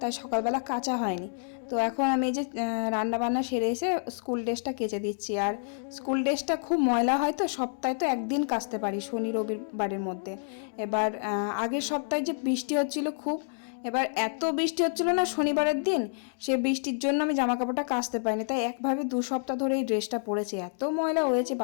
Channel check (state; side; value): silent; right; digital silence